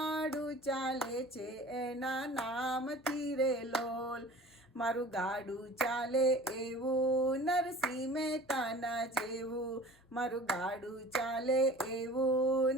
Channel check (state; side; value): normal; both; correlation 0.43